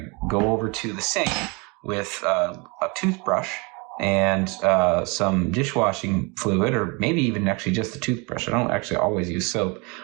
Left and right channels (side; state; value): left; quieter; 29.4 dB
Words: go over to the sink with a toothbrush and some dishwashing fluid, or maybe even actually just the toothbrush. I don't actually always use soap.